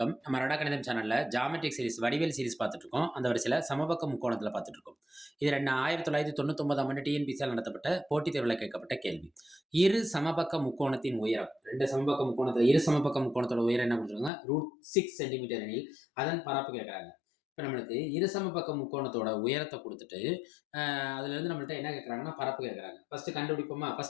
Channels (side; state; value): right; drops out; at 14.3 s